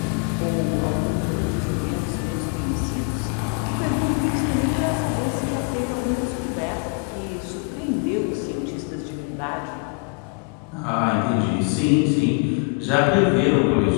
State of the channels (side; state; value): right; quieter; 35.9 dB